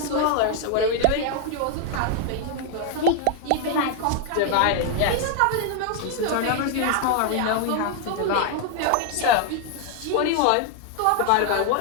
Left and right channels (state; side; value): different; both; correlation 0.00